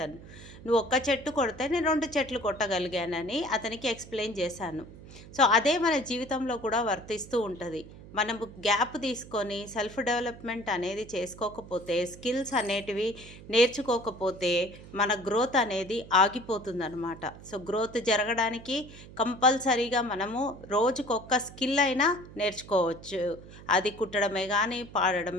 నువ్వు ఒక్క చెట్టు కొడితే నేను 2 చెట్లు కొట్టగలిగానని అతనికి ఎక్స్ప్లెయిన్ చేశాను. సో అదే మన జీవితంలో కూడా వర్తిస్తూ ఉంటుంది. మనము గ్యాప్ తీసుకొని సెల్ఫ్ డెవలప్మెంట్ అనేది చేసుకోకపోతే, స్కిల్స్ అనేటివి నేర్చుకోకపోతే మన గ్రోత్ అనేది ఆగిపోతుందన్నమాట. సో గ్రోత్ జరగడానికి కంపల్సరీగా మనము రోజుకొక్క స్కిల్ అయినా నేర్చుకోవచ్చు. అది కుట్టడమే కానీ,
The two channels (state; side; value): noise; right; hum, 17 dB below the sound